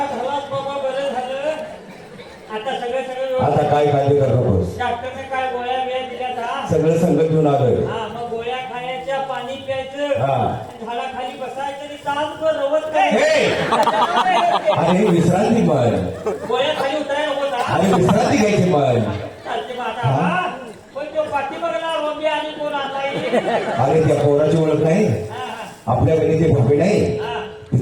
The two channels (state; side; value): identical; both; correlation 1.00